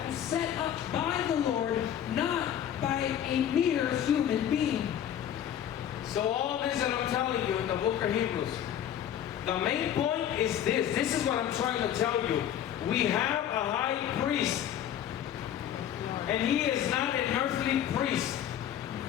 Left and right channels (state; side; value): quieter; right; 10.3 dB